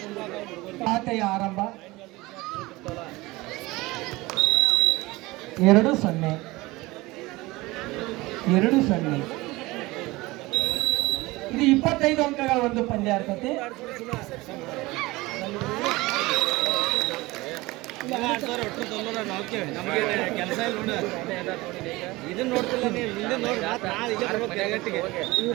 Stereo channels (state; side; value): quieter; left; 21.0 dB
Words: ಖಾತೆಯ ಆರಂಭ 2-0 2-0. ಇದು 25 ಅಂಕಗಳ ಒಂದು ಪಂದ್ಯ ಇರ್ತದೆ. ಕೆಲಸ ಇಲ್ಲ ಇದನ್ನ ನೋಡ್ತಿಲ್ಲ ನೀವು ಹಿಂದೆ